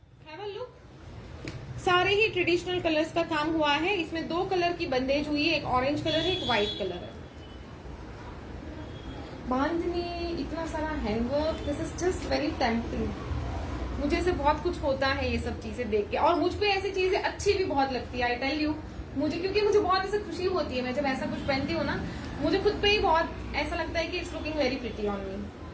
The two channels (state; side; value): identical; both; correlation 1.00